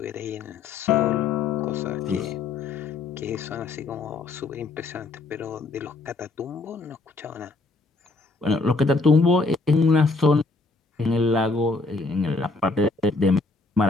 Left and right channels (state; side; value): quieter; right; 3.7 dB